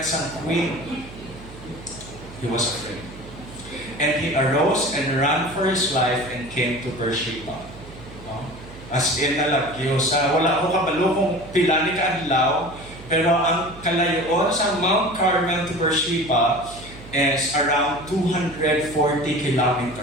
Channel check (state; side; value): noise; right; hum, 17 dB below the sound